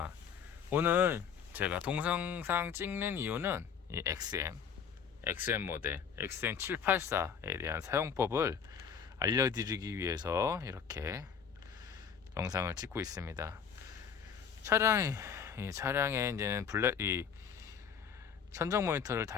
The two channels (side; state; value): right; quieter; 7.1 dB